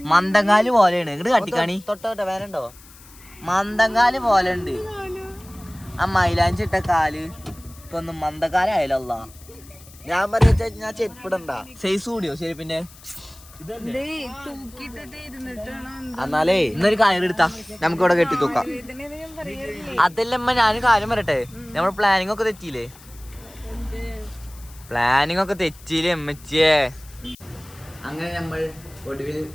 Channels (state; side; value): noise; left; hiss, 22 dB below the sound